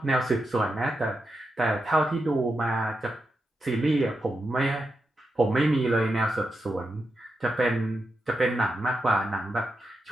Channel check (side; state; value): both; normal; correlation 0.87